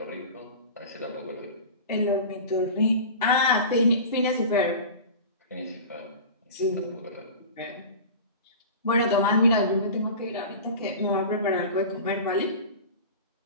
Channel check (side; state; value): both; inverted; correlation -0.34